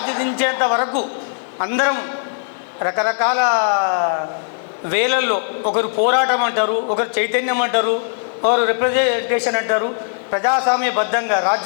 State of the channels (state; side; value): silent; right; 63 dB below the other